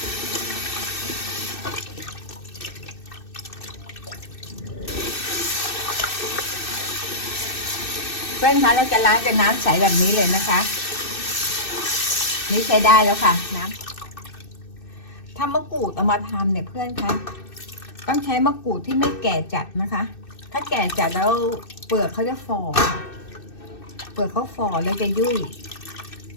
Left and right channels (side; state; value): right; late; 2.6 ms